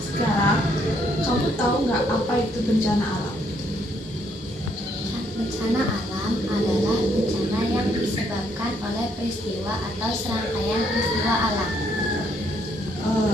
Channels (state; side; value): normal; both; correlation 0.70